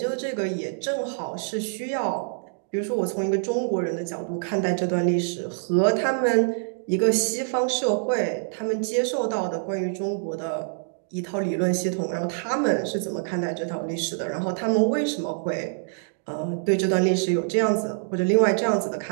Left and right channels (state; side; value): silent; left; digital silence